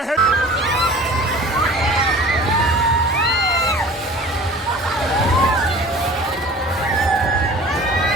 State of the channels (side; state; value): both; normal; correlation 0.44